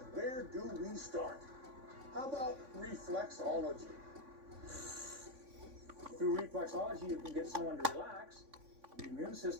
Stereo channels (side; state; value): left; late; 3.5 ms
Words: where do we start? How about reflexology? Through reflexology, you can get someone to relax. The immune